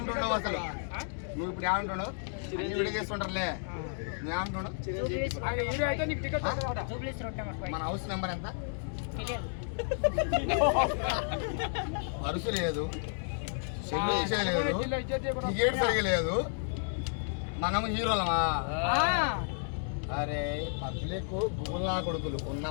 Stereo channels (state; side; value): silent; right; digital silence